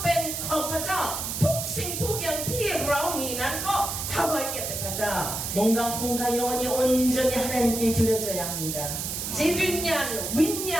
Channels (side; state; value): right; noise; hiss, 4 dB below the sound